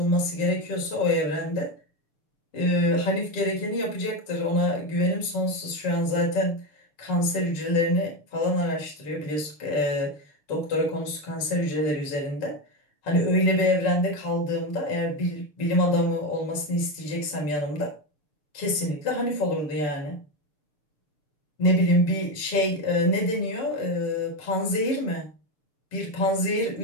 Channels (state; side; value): late; right; 6.7 ms